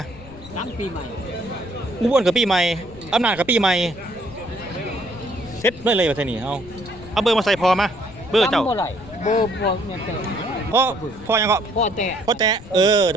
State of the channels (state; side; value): noise; left; rumble, 18 dB below the sound